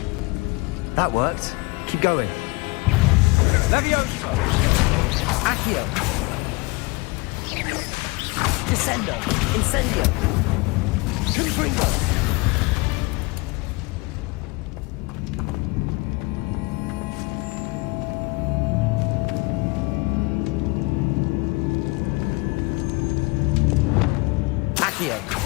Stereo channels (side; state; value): right; quieter; 25.3 dB